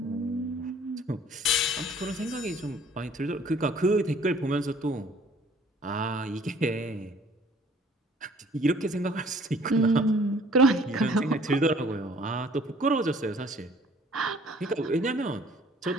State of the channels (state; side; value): normal; both; correlation 0.56